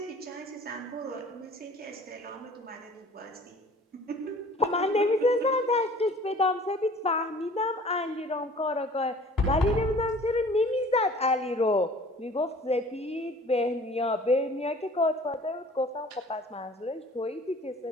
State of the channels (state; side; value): normal; both; correlation 0.49